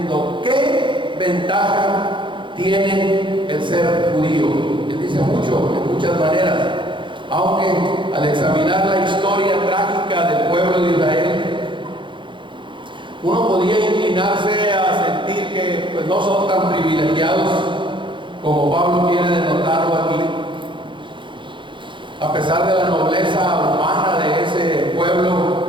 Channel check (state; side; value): late; left; 0.23 ms